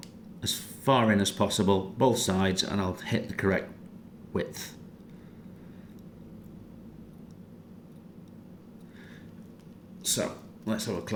as far in as possible, both sides, and I'll hit the correct width. So let's have a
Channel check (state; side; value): identical; both; correlation 1.00